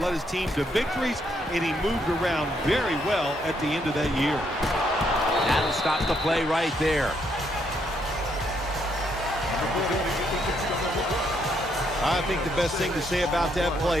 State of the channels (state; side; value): normal; both; correlation 0.74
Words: his team to victories, and he moved around very well at the end of that year. That'll stop the play right there. I think the best thing to say about that